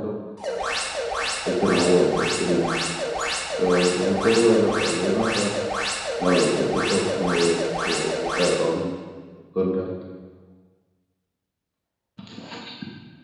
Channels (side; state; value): both; identical; correlation 1.00